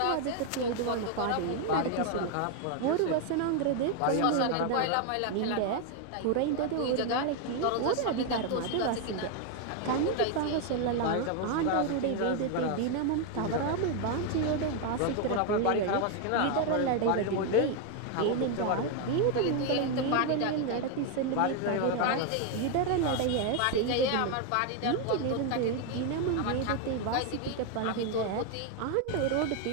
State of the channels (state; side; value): different; both; correlation 0.01